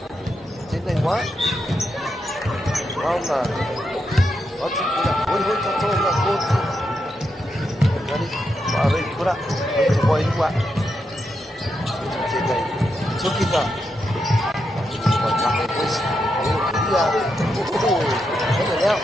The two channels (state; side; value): normal; both; correlation 0.84